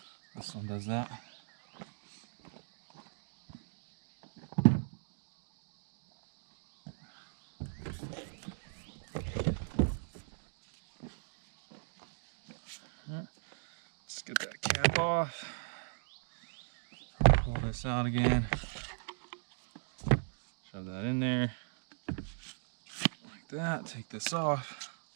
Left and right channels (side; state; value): left; silent; digital silence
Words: This one does that. Let's get that cap off. Pull this out again. Shove that in there. Like that. Take this off.